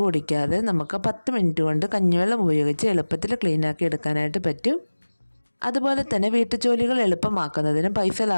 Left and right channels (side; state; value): both; inverted; correlation -1.00